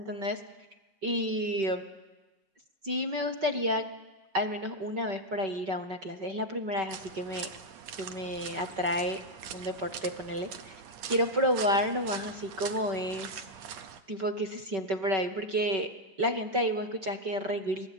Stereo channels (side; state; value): left; late; 5.2 ms